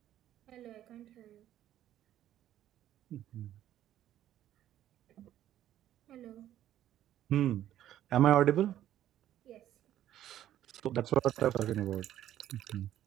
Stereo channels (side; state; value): left; quieter; 12.1 dB